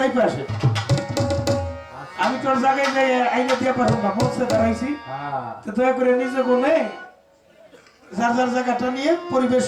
আসেন। আমি তোর জায়গায় যাই আইনে দিয়ে পারবো না, বলছে দাঁড়াইছি। তো দয়া করে নিজে বলে যার যার জায়গাটা নিয়ে পরিবেশ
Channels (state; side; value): identical; both; correlation 1.00